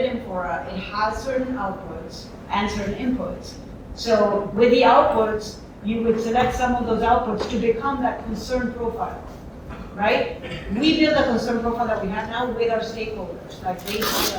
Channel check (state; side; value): identical; both; correlation 1.00